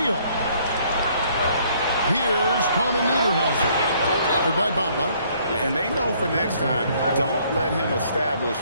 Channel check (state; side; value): inverted; both; correlation -0.63